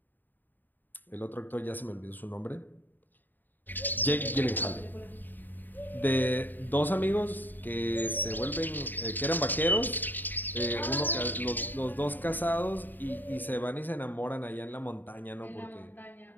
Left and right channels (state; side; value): late; right; 0.089 ms